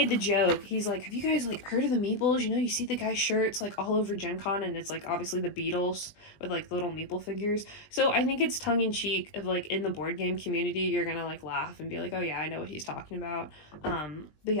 the joke. He's like, have you guys, like, heard of the Meeples? You know, you see the guy's shirts, like, all over Gen Con, and it's, like, obviously the Beatles with, like, the little Meeple figures. So I think it's tongue-in-cheek of, like, in the board game community, you're gonna, like, laugh and be like, oh, yeah, I know what he's talking about. But,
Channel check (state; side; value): late; right; 20 ms